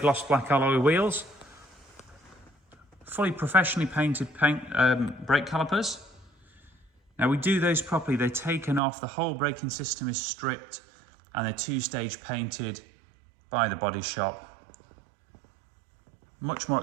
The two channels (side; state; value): left; drops out; at 8.8 s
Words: black alloy wheels, fully professionally painted brake calipers. Now we do those properly, they're taken off, the whole braking system is stripped and they're two-stage painted by the body shop. Much more